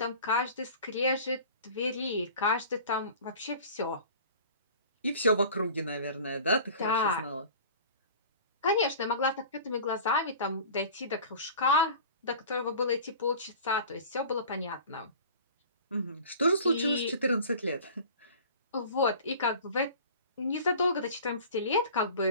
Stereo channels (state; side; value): inverted; both; correlation -0.42